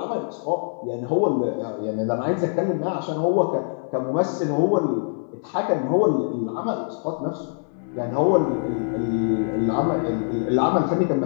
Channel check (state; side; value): silent; right; digital silence